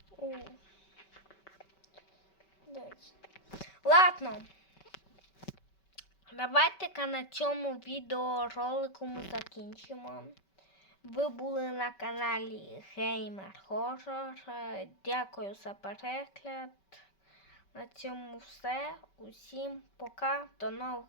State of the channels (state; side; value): late; right; 5.2 ms